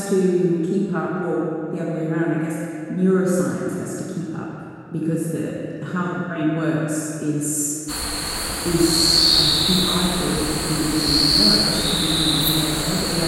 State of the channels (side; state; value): both; identical; correlation 1.00